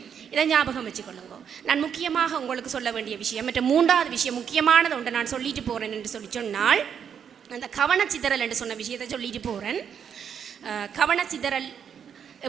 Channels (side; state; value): left; quieter; 7.9 dB